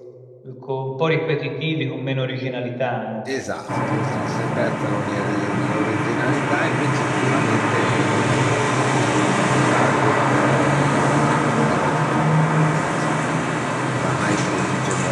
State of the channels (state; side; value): identical; both; correlation 1.00